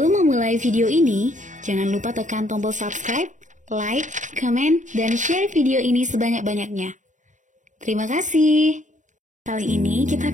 memulai video ini, jangan lupa tekan tombol subscribe, like, comment, dan share video ini sebanyak-banyaknya. Terima kasih. Kali ini kita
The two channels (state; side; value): late; left; 0.36 ms